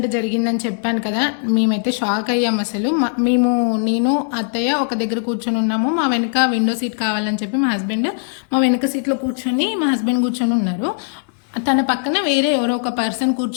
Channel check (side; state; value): right; silent; digital silence